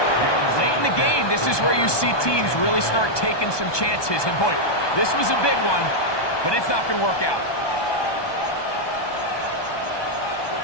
Late in the game, this is where you see teams really start taking some chances. And boy, this was a big one, but it's not going to work out.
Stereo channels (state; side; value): late; right; 1.2 ms